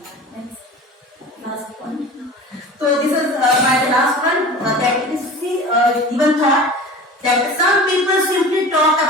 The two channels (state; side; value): normal; both; correlation 0.37